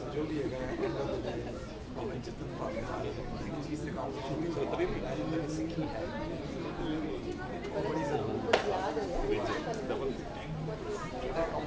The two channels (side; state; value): both; identical; correlation 1.00